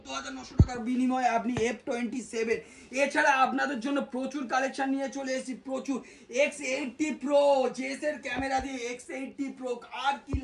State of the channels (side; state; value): both; identical; correlation 1.00